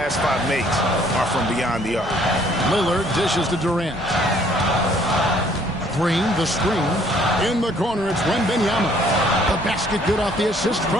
5 makes are from beyond the arc. Lillard dishes to Durant. Green, the screen. In the corner, it's Wembanyama. The basket good off the assist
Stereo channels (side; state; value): both; normal; correlation 0.61